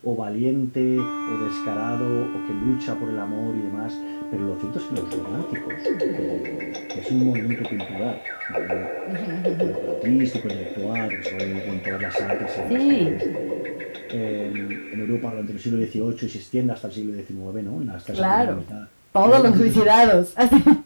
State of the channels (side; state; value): both; inverted; correlation -1.00